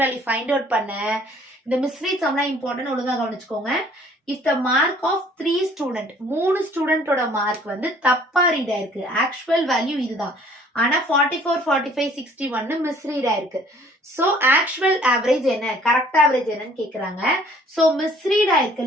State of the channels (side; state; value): both; normal; correlation 0.56